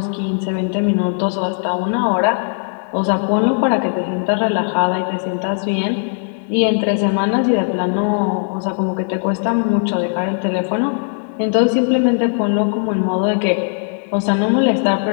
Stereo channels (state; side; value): silent; right; digital silence